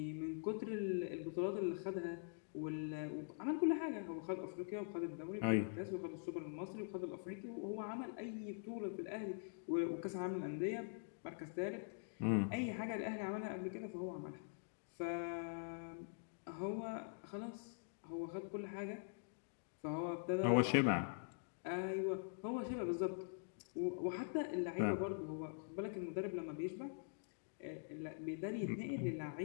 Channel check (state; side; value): silent; right; digital silence